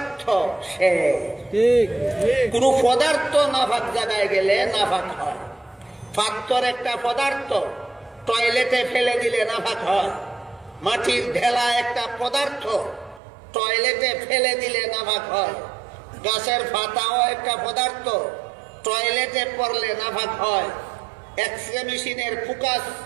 সে কোন পদার্থ নাফাক জায়গায় গেলে নাফাক হয়। পাথর একটা পদার্থ, টয়লেটে ফেলে দিলে নাফাক হয়। মাটির ঢেলা একটা পদার্থ, টয়লেটে ফেলে দিলে নাফাক হয়। গাছের পাতাও একটা পদার্থ, টয়লেটে পড়লে নাফাক হয়। এক্সরে মেশিনের ফোকাস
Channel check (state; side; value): drops out; left; at 13.2 s